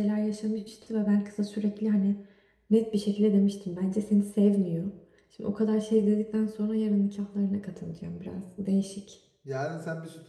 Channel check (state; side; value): identical; both; correlation 1.00